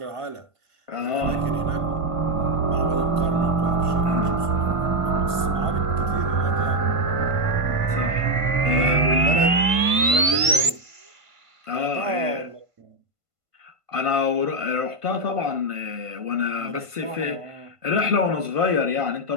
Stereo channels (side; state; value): left; late; 1.5 ms